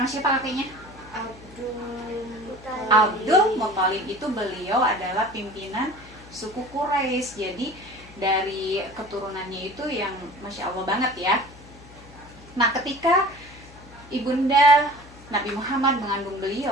siapa kakeknya? Abdul Muthalib itu beliau adalah pimpinan suku Quraisy. Jadi dari keturunannya itu yang Masya Allah banget ya. Nah, ketika ibunda Nabi Muhammad mengandung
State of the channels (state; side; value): noise; left; hum, 21 dB below the sound